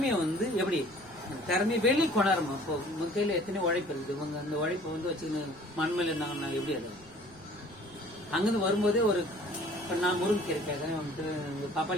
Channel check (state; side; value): noise; right; rumble, 24 dB below the sound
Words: வந்து எப்படி திறமையை வெளியே கொண்டாடுமா? இப்போ உங்க கையில எத்தனை உழைப்பு இருக்குது, இவங்க அந்த உழைப்பை வந்து வச்சுன்னு மண்மையில இருந்தாங்கன்னா எப்படி? அது அங்கிருந்து வரும்போதே ஒரு நான் முருங்கீரை கேட்கறேன், வந்துட்டு